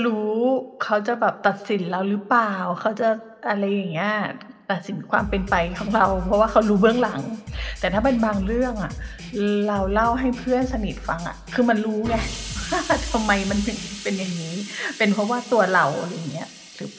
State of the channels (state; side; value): identical; both; correlation 1.00